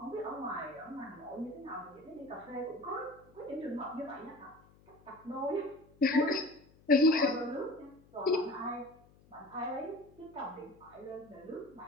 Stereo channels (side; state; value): left; noise; hum, 27 dB below the sound